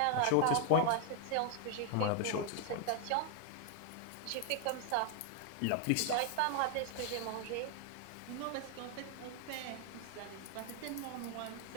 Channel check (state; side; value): different; both; correlation 0.00